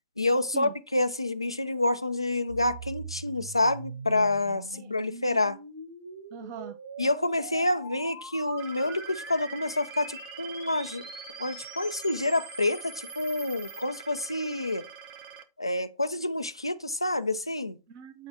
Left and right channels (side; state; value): both; inverted; correlation -0.81